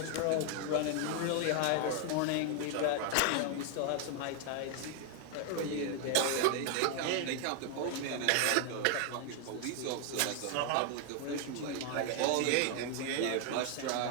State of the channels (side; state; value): both; different; correlation 0.00